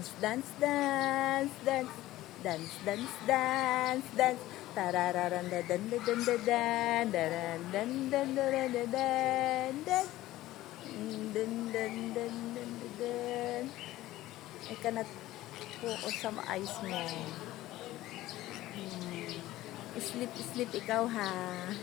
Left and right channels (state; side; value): quieter; right; 16.0 dB